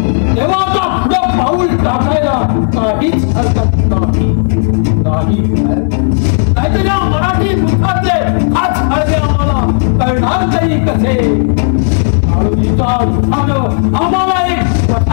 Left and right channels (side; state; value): right; silent; digital silence